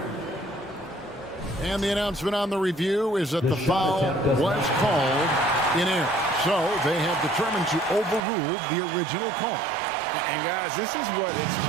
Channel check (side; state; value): left; drops out; at 8.2 s